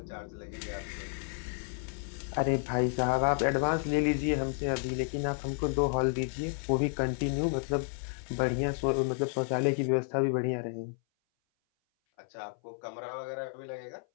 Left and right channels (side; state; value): right; silent; 57 dB below the other